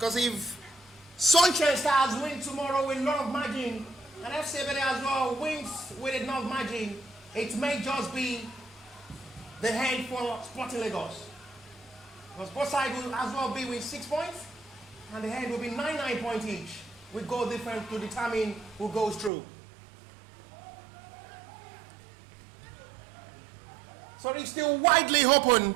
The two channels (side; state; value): left; drops out; at 19.3 s